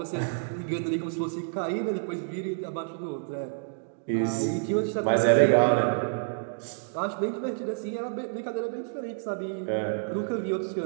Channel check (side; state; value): left; silent; digital silence